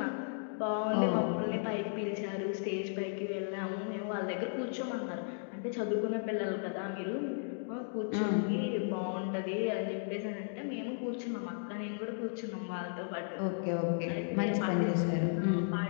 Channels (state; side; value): silent; right; digital silence